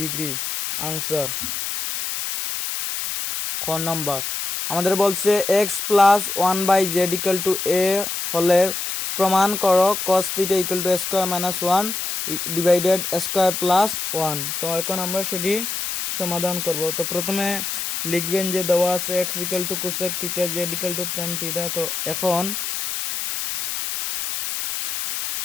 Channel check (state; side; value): noise; left; hiss, 4 dB below the sound